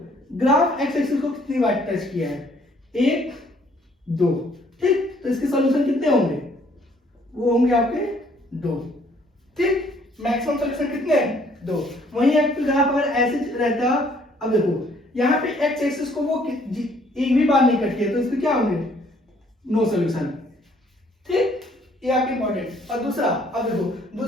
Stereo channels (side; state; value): both; normal; correlation 0.63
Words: ग्राफ एक्स एक्सिस को कितनी बार टच किया है, 1 2। ठीक, तो इसके सॉल्यूशन कितने होंगे, वो होंगे आपके 2। ठीक, मैक्सिमम सॉल्यूशन कितने हैं, 2। वहीं आपका ग्राफ अगर ऐसे रहता, अब देखो यहाँ पे एक्स एक्सिस को वो एक भी बार नहीं कट किया तो इसके क्या होंगे, नो सॉल्यूशन। ठीक, ये आपकी इंपॉर्टेंट। और दूसरा, अब देखो